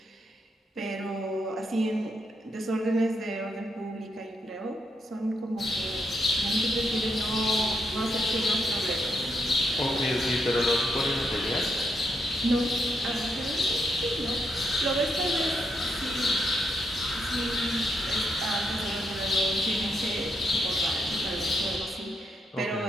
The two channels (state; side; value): normal; both; correlation 0.80